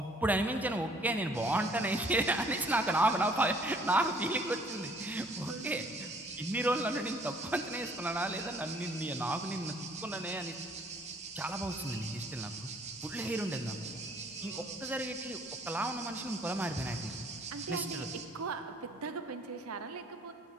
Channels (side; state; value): both; normal; correlation 0.59